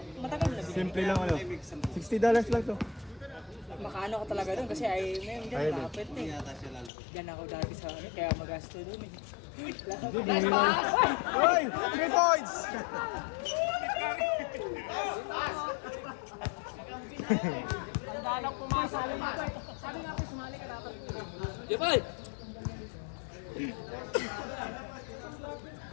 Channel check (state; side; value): drops out; right; at 6.9 s